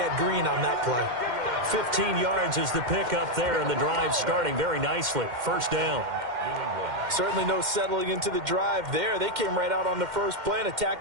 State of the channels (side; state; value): left; late; 2.1 ms